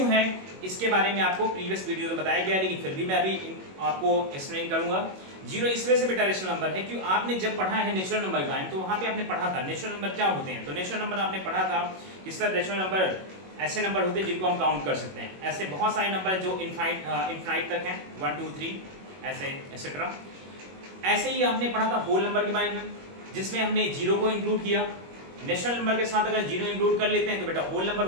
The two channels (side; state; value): left; late; 21 ms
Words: है, इसके बारे में आपको प्रीवियस वीडियो में बताया गया, लेकिन फिर भी मैं अभी आपको एक्सप्लेन करूंगा। जीरो इस वजह से बेटा रेशनल नंबर है क्यों आपने जब पढ़ा है नेचुरल नंबर के बारे में तो वहां पे आपने पढ़ा था नेचुरल नंबर क्या होते हैं। तो नेचुरल नंबर आपने पढ़ा था किस तरह नेचुरल नंबर ऐसे नंबर होते हैं जिनको हम काउंट कर सकते हैं। ऐसे बहुत सारे नंबर जो इनफाइनाइट तक हैं, 1 2 3 ऐसे एक्सेट्रा। ऐसे ही आपने पढ़ा था होल नंबर के बारे में, जिसमें हमने जीरो को इंक्लूड किया। नेचुरल नंबर के साथ अगर जीरो इंक्लूड कर लेते हैं तो बेटा होल नंबर